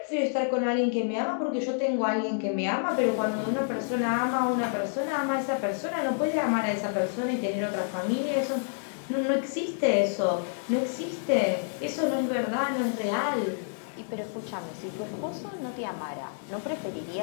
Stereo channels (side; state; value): right; silent; digital silence